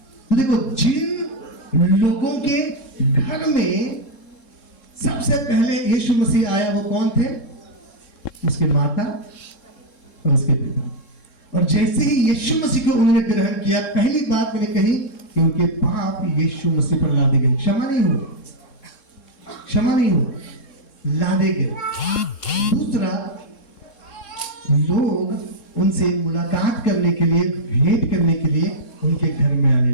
देखो, जिन लोगों के घर में सबसे पहले यीशु मसीह आया, वो कौन थे? उसके माता और उसके पिता। और जैसे ही यीशु मसीह को उन्होंने ग्रहण किया, पहली बात मैंने कही कि उनके पाप यीशु मसीह पर लादे गए। क्षमा नहीं हुआ, क्षमा नहीं हुआ, लादे गए। दूसरा, लोग उनसे मुलाकात करने के लिए, भेंट करने के लिए उनके घर में आने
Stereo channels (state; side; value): late; right; 3.7 ms